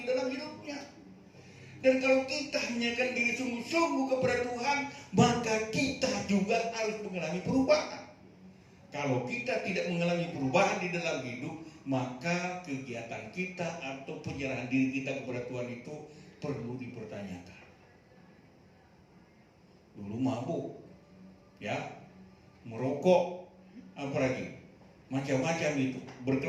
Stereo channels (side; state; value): both; identical; correlation 1.00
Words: dalam hidupnya. Dan kalau kita menyerahkan diri sungguh-sungguh kepada Tuhan, maka kita juga harus mengalami perubahan. Kalau kita tidak mengalami perubahan di dalam hidup, maka kegiatan kita atau penyerahan diri kita kepada Tuhan itu perlu dipertanyakan. Dulu mabuk, ya, merokok, apalagi macam-macam itu,